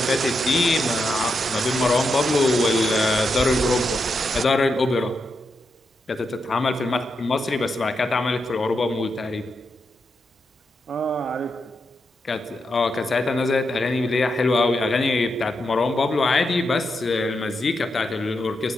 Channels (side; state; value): both; normal; correlation 0.84